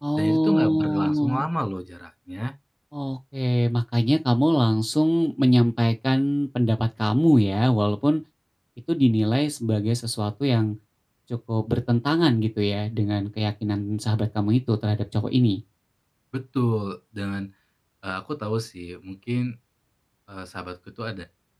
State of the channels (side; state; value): both; identical; correlation 1.00